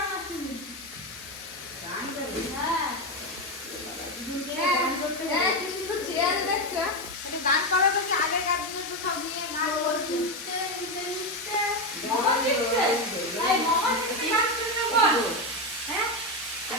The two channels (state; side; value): normal; both; correlation 0.11